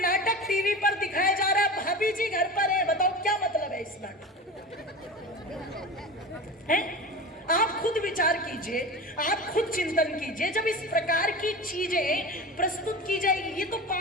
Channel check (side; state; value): both; normal; correlation 0.30